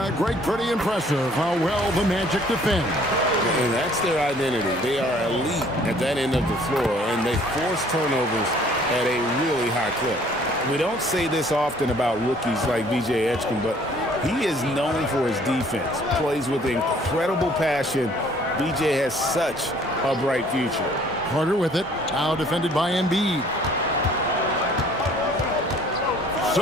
Greg, pretty impressive how well the Magic defend. And that's their identity. They are elite at that end of the floor, and they force turnovers at a really high clip. We don't say this often about rookies like VJ Edgecombe, but he is known for his defense. Plays with incredible passion. VJ has such a bright future. Carter with it. Now defended by Embiid.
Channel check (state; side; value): normal; both; correlation 0.57